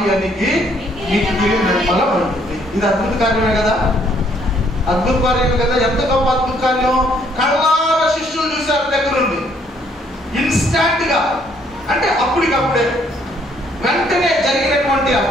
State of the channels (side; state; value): both; normal; correlation 0.66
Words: అణిగి మిక్కిలి నిర్మలమైంది. ఇది అద్భుత కార్యమే కదా, అద్భుత కార్యమే కదా. ఎంత గొప్ప అద్భుత కార్యం! కళ్ళారా శిష్యులు చూశారు దగ్గరుండి, ఇన్స్టాంట్ గా, అంటే అప్పటికప్పుడే వెంటనే జరిగినటువంటి